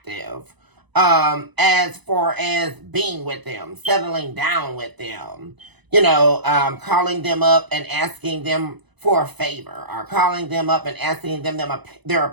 As far as being with them, settling down with them. Calling them up and asking them for a favor. Or calling them up and asking them their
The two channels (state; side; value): late; left; 1.0 ms